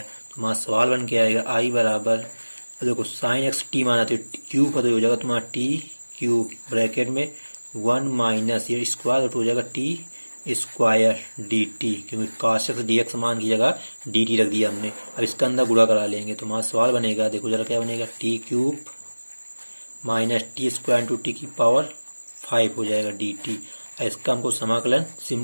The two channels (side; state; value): both; inverted; correlation -1.00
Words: हमारा सवाल बन के आएगा आई बराबर, देखो साइन x t माना तो क्यूब का, तो हो जाएगा तुम्हारा t³ ब्रैकेट में 1 माइनस ये स्क्वायर, तो हो जाएगा t² dt, क्योंकि cos x dx मान की जगह dt रख दिया हमने। अब इसका अंदर गुणा करा लेंगे तो हमारा सवाल बनेगा, देखो जरा क्या बनेगा, t³ minus t² into t की पावर 5 हो जाएगा dt। इसका हमको समाकलन